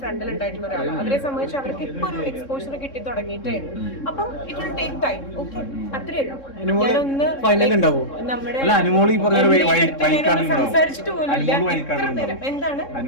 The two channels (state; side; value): late; right; 3.7 ms